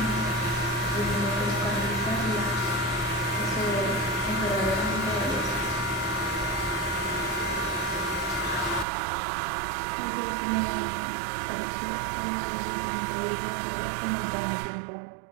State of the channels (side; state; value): left; drops out; at 8.8 s